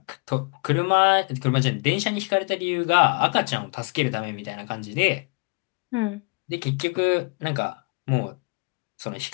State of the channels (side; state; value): right; quieter; 32.0 dB